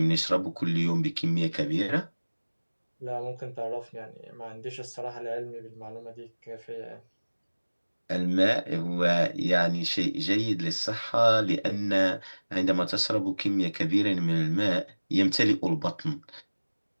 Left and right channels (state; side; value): inverted; both; correlation -1.00